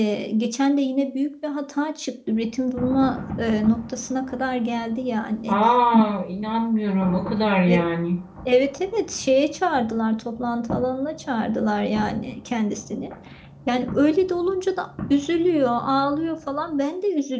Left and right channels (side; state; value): both; identical; correlation 1.00